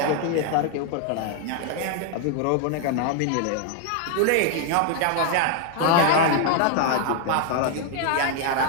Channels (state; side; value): different; both; correlation 0.00